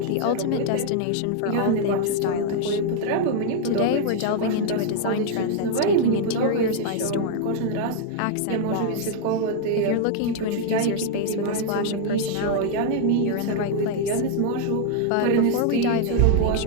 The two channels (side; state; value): both; different; correlation 0.00